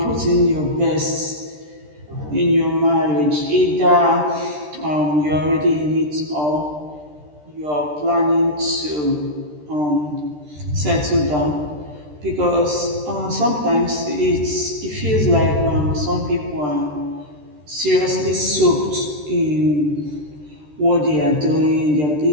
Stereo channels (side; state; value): left; late; 13 ms